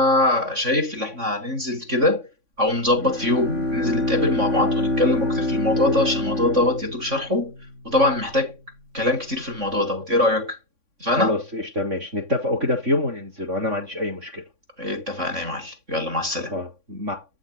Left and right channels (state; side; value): late; left; 3.6 ms